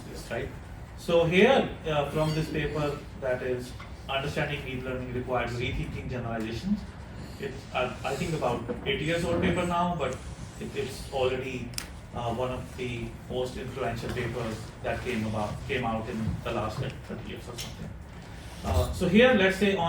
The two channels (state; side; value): identical; both; correlation 1.00